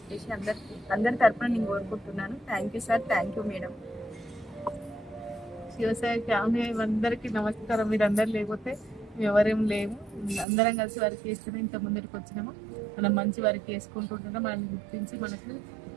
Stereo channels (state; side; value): drops out; left; at 10.5 s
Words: అందరి తరపున నేను కోరుకుంటున్నాను. Thank you sir, thank you madam. Shivasai family అందరికీ నమస్కారం. మీరు అందరు లేకపోతే మేము ఎవరేం లేము, అందరం కలిసి వర్క్ చేస్తేనే ఇంత ముందరికి వచ్చినాము. మనం మంచి వర్క్ చేసుకుంటుంటున్నాం. మనల్ని గుర్తించి మనకు